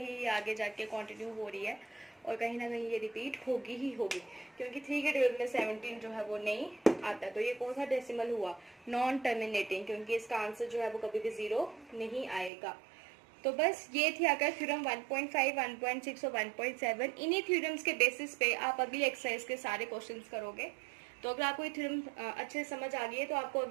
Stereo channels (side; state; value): left; drops out; at 12.5 s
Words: ये आगे जाके कंटिन्यू हो रही है और कहीं ना कहीं ये रिपीट होगी ही होगी, क्योंकि 3 के टेबल में 17 जो है वो नहीं आता। तो ये कौन सा डेसिमल हुआ, नॉन टर्मिनेटिंग, क्योंकि इसका आंसर जो है वो कभी भी 0 नहीं आएगा। तो बस ये थी आकर थ्योरम 1.5, 1.6 और 1.7। इन्हीं थ्योरम्स के बेसिस पे आप अगली एक्सरसाइज के सारे क्वेश्चंस करोगे। तो अगर आपको ये थ्योरम अच्छे से समझ आ गई है तो आपको